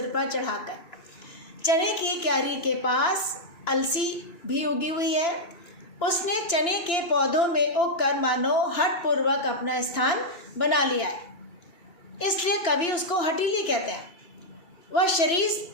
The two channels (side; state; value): right; late; 2.9 ms